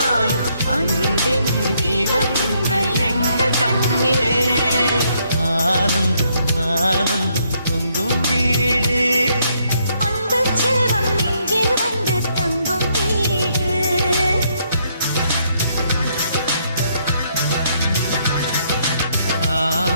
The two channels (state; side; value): inverted; both; correlation -0.72